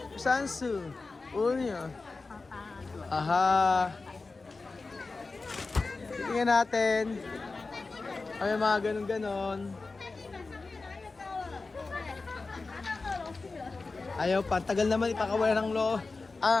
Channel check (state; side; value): quieter; right; 3.8 dB